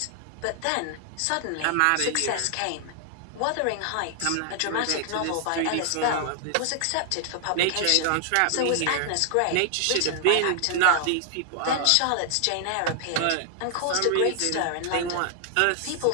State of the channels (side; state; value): both; different; correlation 0.00